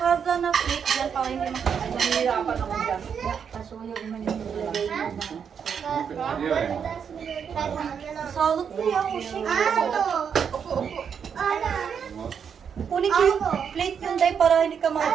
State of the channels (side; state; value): left; quieter; 7.2 dB